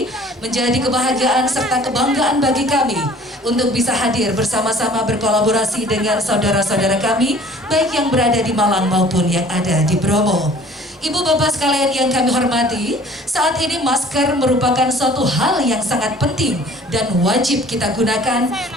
Menjadi kebahagiaan serta kebanggaan bagi kami untuk bisa hadir bersama-sama berkolaborasi dengan saudara-saudara kami baik yang berada di Malang maupun yang ada di Bromo. Ibu bapak sekalian yang kami hormati, saat ini masker merupakan suatu hal yang sangat penting dan wajib kita gunakan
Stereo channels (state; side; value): normal; both; correlation 0.50